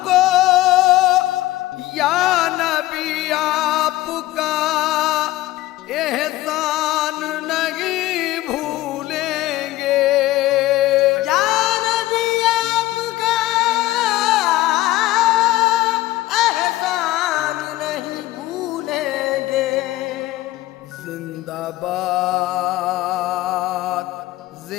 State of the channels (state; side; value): quieter; right; 16.8 dB